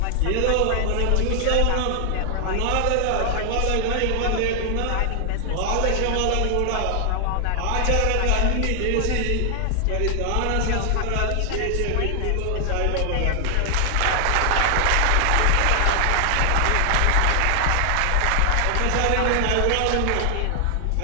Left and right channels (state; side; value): different; both; correlation 0.00